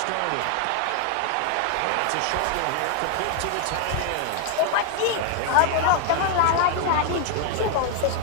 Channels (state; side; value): different; both; correlation 0.00